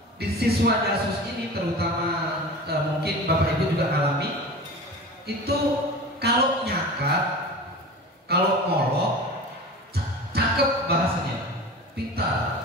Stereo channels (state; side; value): normal; both; correlation 0.34